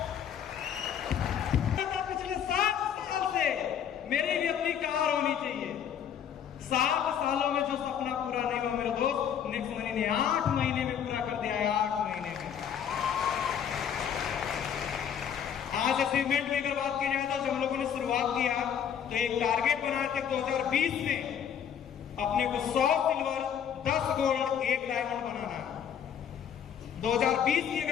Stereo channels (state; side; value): quieter; right; 8.6 dB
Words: पिछले 7 साल से मेरी भी अपनी कार होनी चाहिए। 7 सालों में जो सपना पूरा नहीं हुआ मेरे दोस्त, नेक्स्ट मनी ने 8 महीने में पूरा कर दिया है। 8 महीने में। आज अचीवमेंट की अगर बात की जाए तो जब हम लोगों ने शुरुआत किया तो एक टारगेट बनाए थे 2020 में अपने को 100 सिल्वर, 10 गोल्ड, 1 डायमंड बनाना है। 2020 की